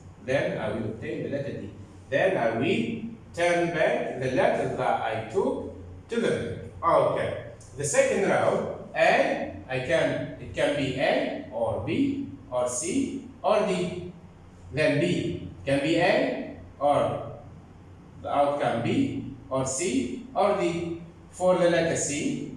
Then I will obtain the letter D. Then I will turn back the letter that I took to the back. Okay. The second row, A, it can be A or B or C or D. Then B can be A or the outcome B or C or D. For the letter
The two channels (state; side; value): identical; both; correlation 1.00